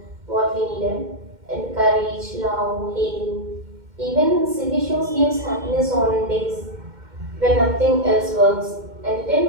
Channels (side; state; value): left; late; 2.1 ms